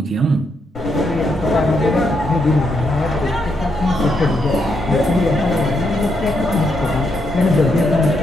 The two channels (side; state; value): both; normal; correlation 0.79